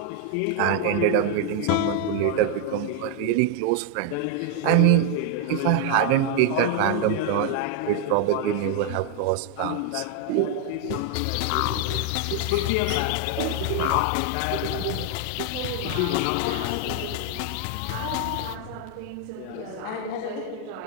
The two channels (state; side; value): different; both; correlation 0.00